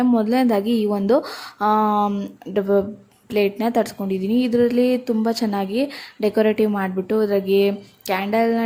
ಮೊದಲನೇದಾಗಿ ಈ ಒಂದು ಪ್ಲೇಟ್ನ ತರಿಸ್ಕೊಂಡಿದ್ದೀನಿ. ಇದರಲ್ಲಿ ತುಂಬ ಚೆನ್ನಾಗಿ ಡೆಕೋರೇಟಿವ್ ಮಾಡಿಬಿಟ್ಟು ಅದ್ರಾಗೆ ಕ್ಯಾಂಡಲ್ನ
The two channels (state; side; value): identical; both; correlation 1.00